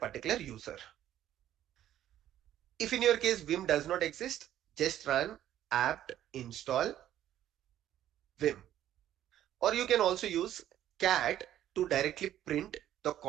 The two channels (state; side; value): quieter; left; 12.0 dB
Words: particular user. If in your case Vim does not exist, just run apt install Vim. Or you can also use cat to directly print the